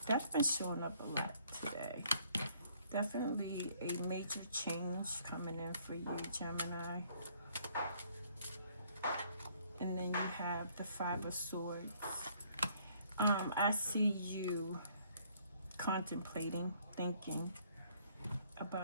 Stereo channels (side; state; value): both; inverted; correlation -0.64